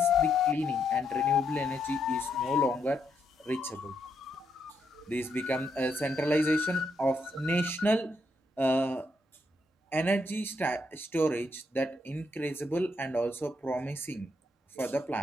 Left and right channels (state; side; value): normal; both; correlation 0.78